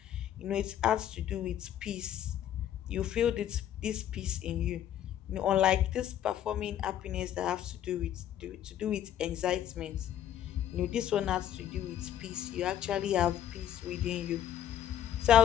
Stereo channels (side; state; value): right; quieter; 10.7 dB